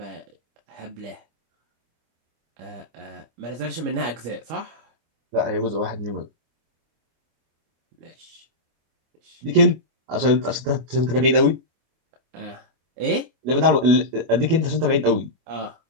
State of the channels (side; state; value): left; late; 25 ms